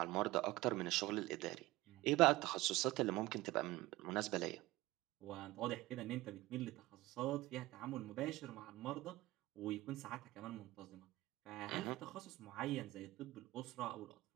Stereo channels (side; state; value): left; quieter; 18.5 dB